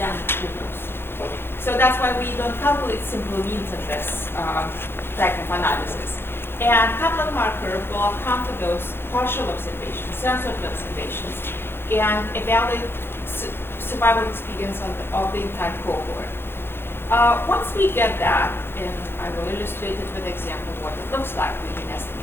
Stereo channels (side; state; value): right; late; 0.11 ms